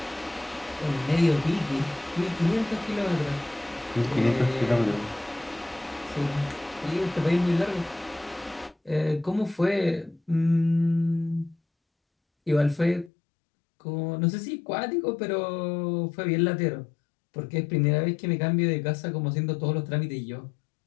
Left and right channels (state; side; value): drops out; right; at 13.1 s